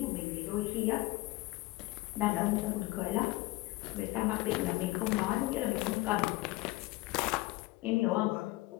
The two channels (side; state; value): right; quieter; 20.3 dB